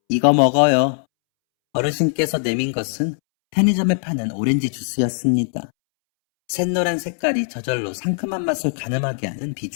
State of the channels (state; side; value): silent; right; 65 dB below the other